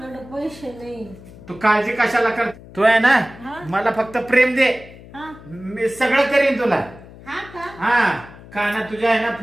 पैसे नाही. तू काळजी कशाला कर. तू आहे ना हा. मला फक्त प्रेम दे. हा मी सगळं करीन तुला. हा का? हा कानात तुझ्या आहे ना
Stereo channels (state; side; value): noise; left; hum, 19 dB below the sound